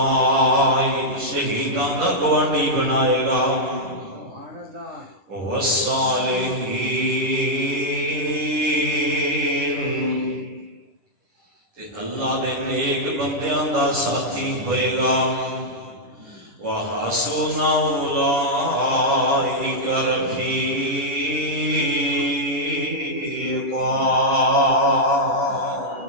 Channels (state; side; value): late; left; 11 ms